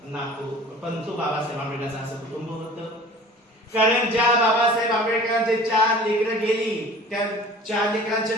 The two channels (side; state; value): both; normal; correlation 0.44